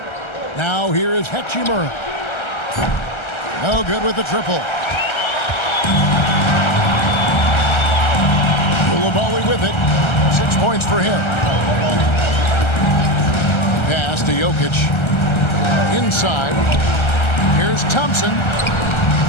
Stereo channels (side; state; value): right; late; 1.3 ms